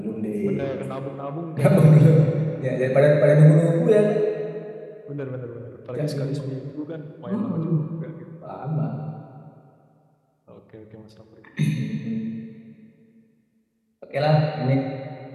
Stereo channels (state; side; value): identical; both; correlation 1.00